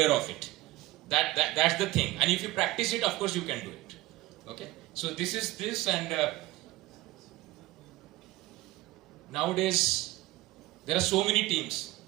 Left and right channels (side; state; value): left; quieter; 18.3 dB